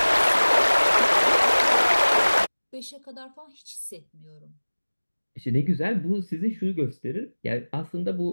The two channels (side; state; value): both; inverted; correlation -1.00